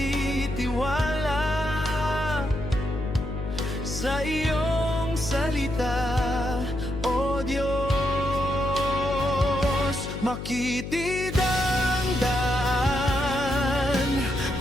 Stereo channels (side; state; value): left; noise; hum, 7 dB below the sound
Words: sa iyong salita, O Diyos. Makitid ang daan